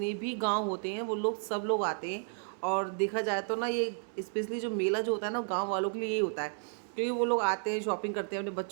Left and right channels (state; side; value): silent; left; 56 dB below the other